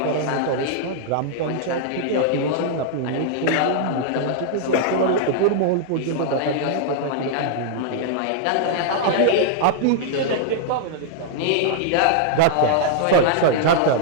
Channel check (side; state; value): both; different; correlation -0.01